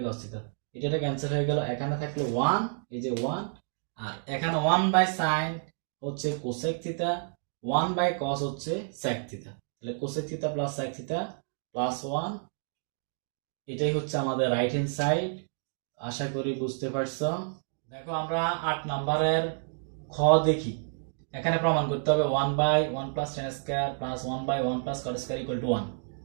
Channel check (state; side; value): silent; left; digital silence